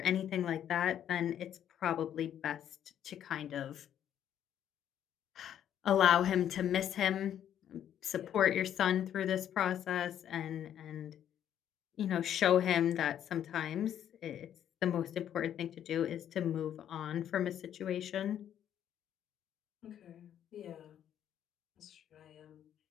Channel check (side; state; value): right; quieter; 10.1 dB